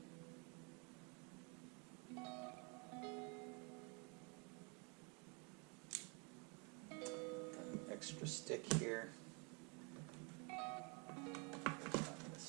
Got an extra stick here. I'm going to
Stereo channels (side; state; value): left; quieter; 33.3 dB